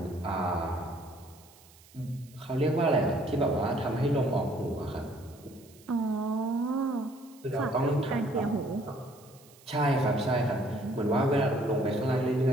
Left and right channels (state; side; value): noise; right; hiss, 25 dB below the sound